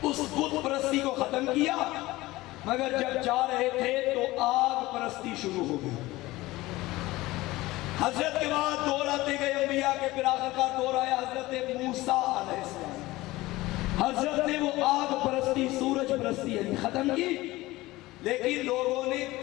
اس بت پرستی کو ختم کیا، مگر جب جا رہے تھے تو آگ پرستی شروع ہو گئی. حضرت کے بعد دور آتے گئے انبیاء کے، پھر آخر کا دور آیا حضرت موسیٰ علیہ السلام. حضرت نے وہ آگ پرستی، سورج پرستی یعنی ختم کی، لیکن لوگوں نے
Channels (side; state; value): right; quieter; 18.9 dB